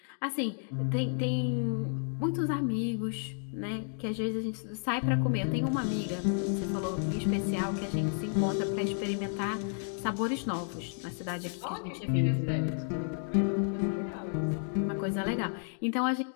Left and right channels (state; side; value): silent; right; 57 dB below the other